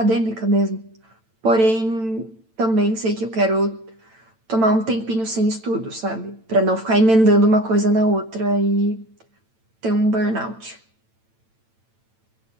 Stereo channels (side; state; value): left; late; 9.0 ms